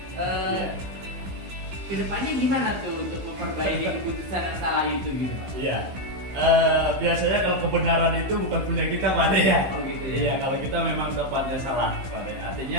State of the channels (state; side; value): late; left; 16 ms